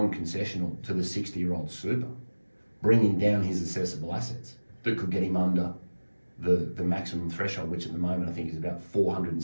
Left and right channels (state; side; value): inverted; both; correlation -1.00